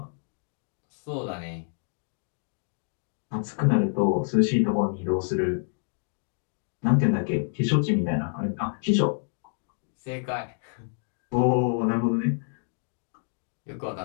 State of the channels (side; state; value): right; silent; 57 dB below the other